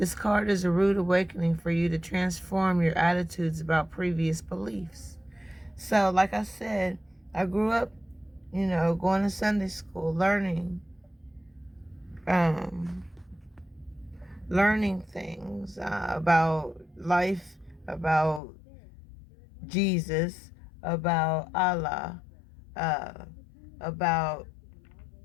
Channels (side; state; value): right; drops out; at 18.4 s